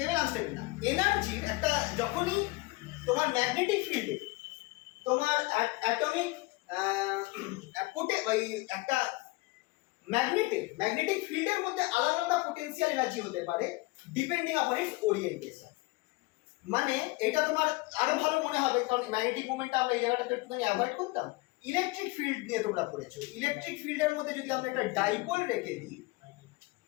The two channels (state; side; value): quieter; right; 22.8 dB